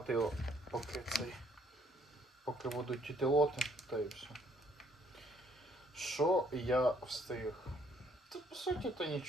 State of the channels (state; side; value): normal; both; correlation 0.66